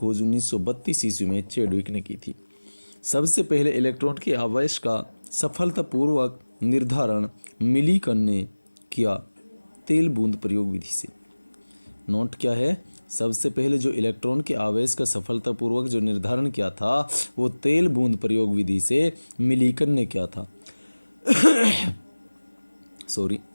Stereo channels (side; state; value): both; inverted; correlation -1.00